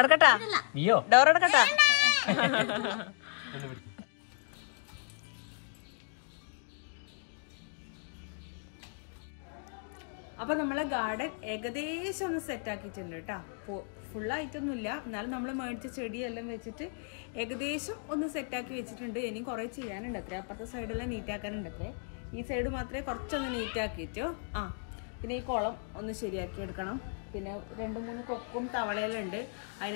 ഡോർ അടക്കട്ടാ. അപ്പൊ നമ്മളെ ഗാർഡൻ ഏകദേശം ഒന്ന് സെറ്റ് ആക്കിയിട്ടുണ്ട് കേട്ടാ. ഫുള്ളായിട്ടൊന്നുമില്ല, എന്നാലും നമ്മൾ മേടിച്ച ചെടിയെല്ലാം വെച്ചിട്ട് ഏകദേശം ഒന്ന് സെറ്റാക്കി വെച്ചിട്ടുണ്ട്. ഇനി കുറെ ചെയ്യാനുണ്ട് അത്രേ. അപ്പുറത്തെ സൈഡെല്ലാം നീറ്റാക്കാനുണ്ട് അത്രേ. ഈ സൈഡ് മാത്രമേ കുറച്ചൊന്ന് നീറ്റാക്കിയിട്ടോ. പിന്നെ ഈ കുളം ഒന്ന് ശരിയാക്കി എടുക്കണം. പിന്നെ 2-3 കൊക്കും തവളയെല്ലാം ഉണ്ട്,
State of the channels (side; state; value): right; silent; 55 dB below the other